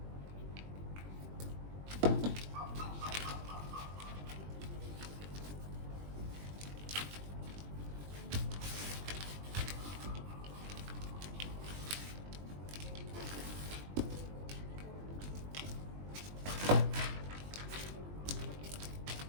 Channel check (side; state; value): left; late; 20 ms